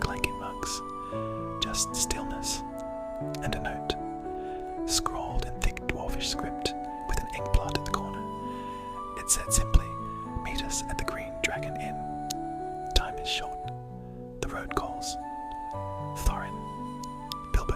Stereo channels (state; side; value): identical; both; correlation 1.00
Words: mugs. Just stillness and a note, scrawled in thick dwarfish script with an ink blot at the corner. It said simply, "Meet us at the Green Dragon Inn. Time is short. The road calls." Thorin.